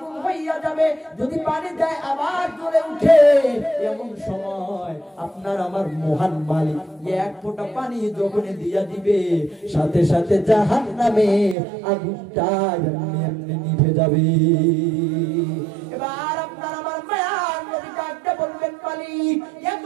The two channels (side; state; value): left; drops out; at 11.6 s